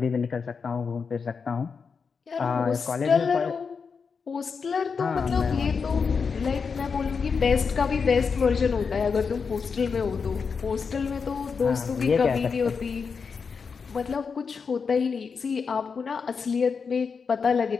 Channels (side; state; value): right; quieter; 5.5 dB